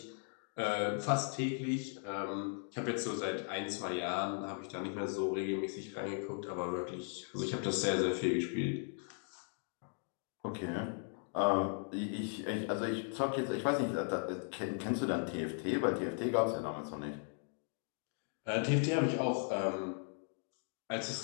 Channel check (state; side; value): silent; right; 53 dB below the other